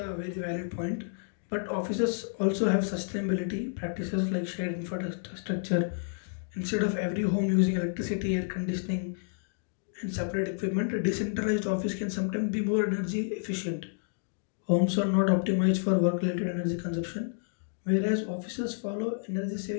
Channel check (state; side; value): silent; right; digital silence